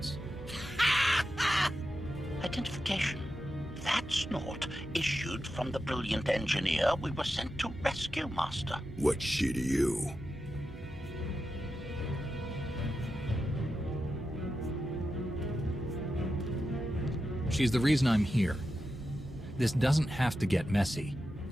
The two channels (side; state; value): both; normal; correlation 0.90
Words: Identification. That's not issued from the brilliant engineer we were sent to rescue, Master. What's she to you? She's the reason I'm here. This doesn't have to get messy.